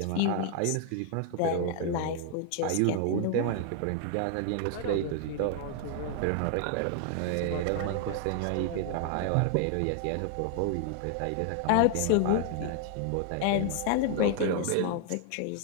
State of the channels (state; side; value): different; both; correlation 0.00